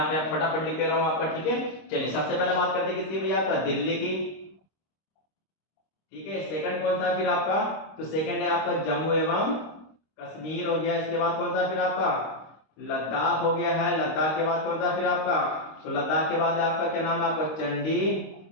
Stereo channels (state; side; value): late; right; 26 ms